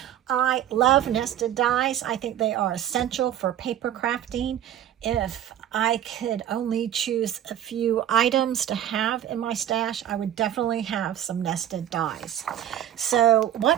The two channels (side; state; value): left; quieter; 11.2 dB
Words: I love nested dies. I think they are essential for paper crafting. If I could only choose a few items to have in my stash, I would definitely have some nested dies. So